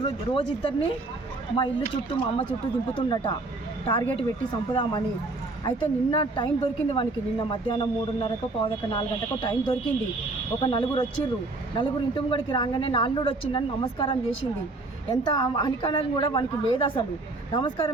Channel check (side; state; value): left; quieter; 3.1 dB